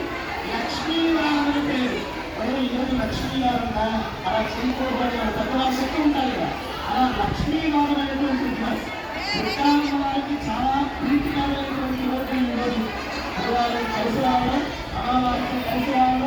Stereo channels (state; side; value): identical; both; correlation 1.00